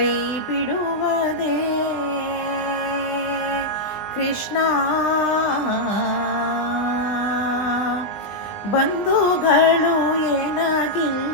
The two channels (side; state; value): right; late; 20 ms